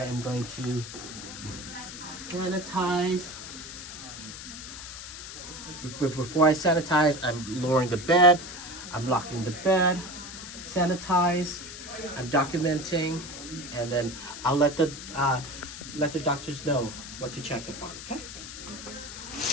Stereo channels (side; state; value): left; noise; hiss, 11 dB below the sound